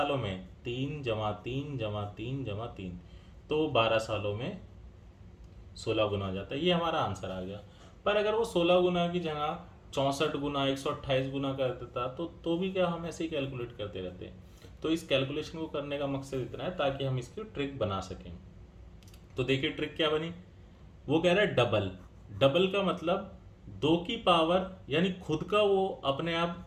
में, 3 जमा 3 जमा 3 जमा 3, तो 12 सालों में 16 गुना हो जाता है। ये हमारा आंसर आ गया। पर अगर वो 16 गुना की जगह 64 गुना 128 गुना कर देता तो भी क्या, हम ऐसे ही कैलकुलेट करते रहते। तो इस कैलकुलेशन को करने का मकसद इतना है ताकि हम इसकी ट्रिक बना सकें। तो देखिए ट्रिक क्या बनी, वो कह रहा है डबल, डबल का मतलब 2 की पावर, यानी खुद का वो अपने आप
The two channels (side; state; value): both; identical; correlation 1.00